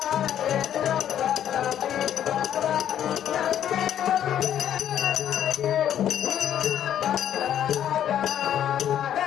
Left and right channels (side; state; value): right; quieter; 10.4 dB